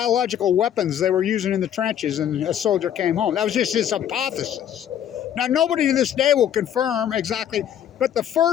weapons they were using in the trenches, and a soldier came home. That was just his hypothesis. Now, nobody to this day will confirm exactly, but the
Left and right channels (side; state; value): right; quieter; 10.0 dB